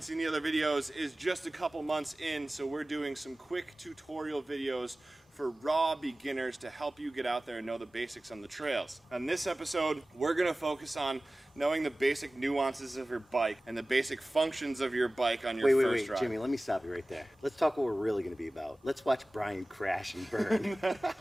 seen the other videos, is just a couple months in, so we're doing some quick tutorial videos for raw beginners to help you get out there and know the basics on the trails. On this episode, we're going to focus on knowing the basic nuances of your bike and the basic functions of your bike on your first ride. Jimmy, let me stop you right there. Let's talk what we're really going to be about. Let's watch Bryan crash and burn.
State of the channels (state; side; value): normal; both; correlation 0.98